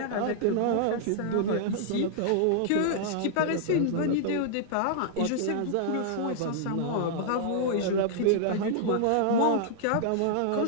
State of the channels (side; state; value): both; different; correlation -0.01